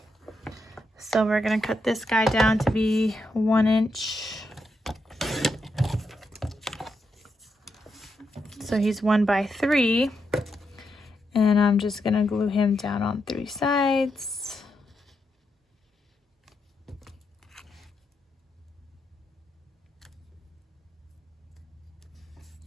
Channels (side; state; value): both; normal; correlation 0.83